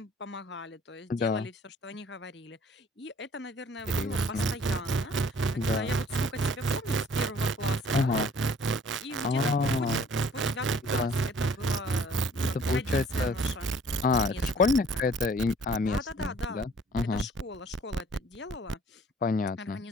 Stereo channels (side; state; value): both; normal; correlation 0.55